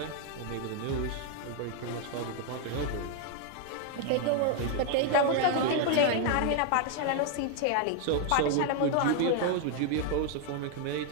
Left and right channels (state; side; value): different; both; correlation 0.00